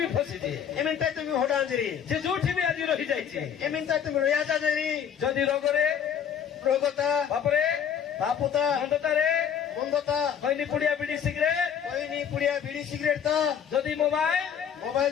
ବି ଫସିଛି ଏମିନ୍ ଟାଇତ ବି ହଡା ଜେରି ଯେ ଯୋଉଠି ବି ଆଜି ରହିଯାଇଛି ଏମିନ୍ ଟାଇତ ବି ରିଆଜା ଜେରି ଯଦି ରୋଗରେ ରୋଗତା ପାପରେ ପାପୁତା ମନ୍ଦତାରେ ମନ୍ଦତା ଖଇନି ପୁଡିଆ ବିଡି ସିଗାରେଟ কইনি পুড়িয়া বিড়ি সিগারেট তা ଯଦି মোবাইল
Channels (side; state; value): right; quieter; 8.3 dB